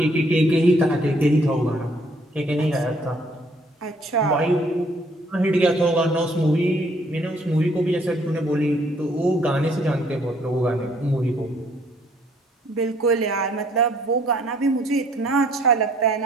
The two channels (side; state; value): both; normal; correlation 0.63